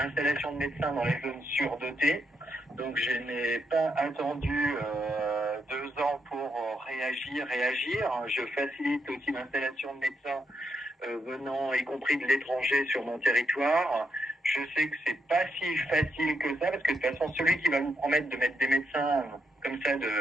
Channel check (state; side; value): normal; both; correlation 0.79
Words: de médecins dans les zones surdotées. Donc je n'ai pas attendu 2 ans pour réagir. Je facilite aussi l'installation de médecins venant, y compris de l'étranger, sur mon territoire. Je sais que c'est pas si facile que ça, parce que de toute façon, celui qui va vous promettre de mettre des médecins comme ça